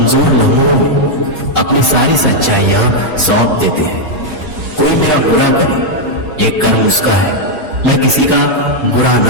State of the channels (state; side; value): normal; both; correlation -0.01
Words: लम्हों में अपनी सारी सच्चाइयां सौंप देते हैं। कोई मेरा बुरा करे ये कर्म उसका है, मैं किसी का बुरा